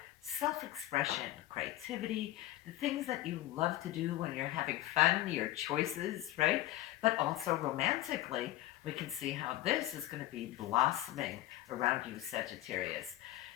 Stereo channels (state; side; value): quieter; right; 15.7 dB